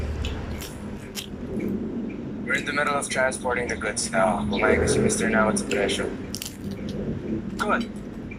We're in the middle of transporting the goods now. Kumain kasi Mr. Nawat sa presyo. Good.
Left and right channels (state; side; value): identical; both; correlation 1.00